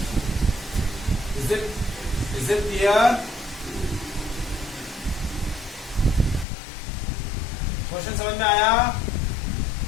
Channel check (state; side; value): drops out; right; at 6.5 s